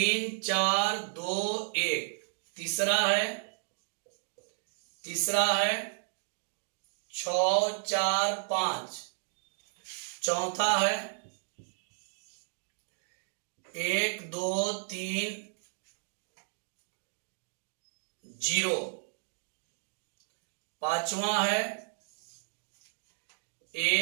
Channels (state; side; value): silent; left; digital silence